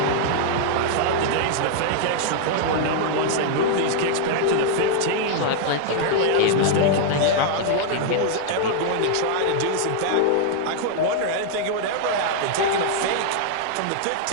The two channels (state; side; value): different; both; correlation -0.01